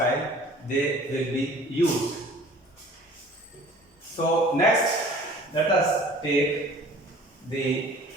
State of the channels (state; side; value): normal; both; correlation 0.48